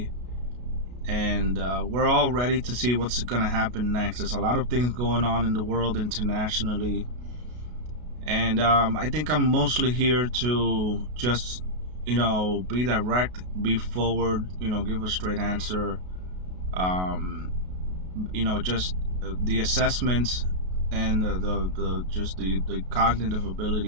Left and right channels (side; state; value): left; late; 33 ms